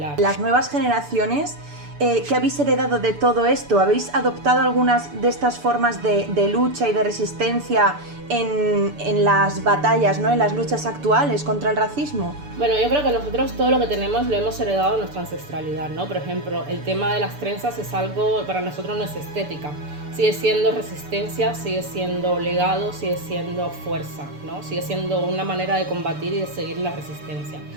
Las nuevas generaciones, ¿qué habéis heredado de todo esto? ¿Habéis adoptado algunas de estas formas de lucha y de resistencia en las batallas, ¿no?, en las luchas actuales contra el racismo? Bueno, yo creo que nosotros todo lo que tenemos lo hemos heredado de nuestra ancestralidad, ¿no? Por ejemplo, el tema de las trenzas es algo, para nosotros no es estética. Sigue siendo resistencia, sigue siendo legado, sigue siendo fuerza, ¿no? Sigue siendo una manera de combatir y de seguir la resistencia.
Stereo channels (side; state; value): left; late; 6.9 ms